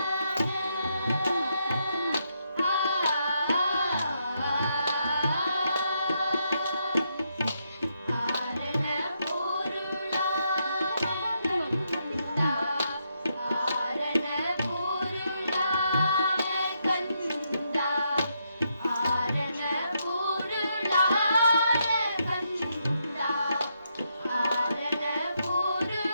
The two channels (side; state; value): both; inverted; correlation -0.79